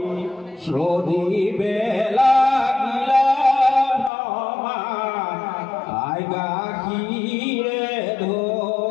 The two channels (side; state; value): right; drops out; at 4.1 s